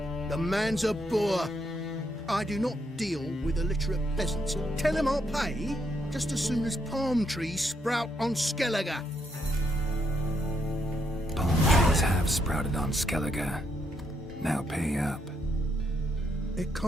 the man's a boor. I do not deal with illiterate peasants. Tell him I'll pay just as soon as palm trees sprout on Skellige. Palm trees have sprouted on Skellige. Now pay up. It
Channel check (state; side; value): normal; both; correlation 0.77